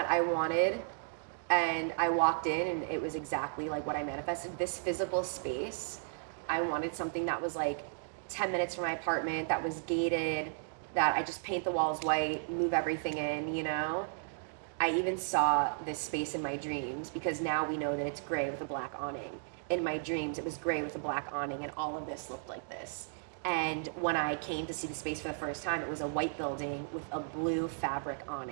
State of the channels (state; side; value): silent; left; digital silence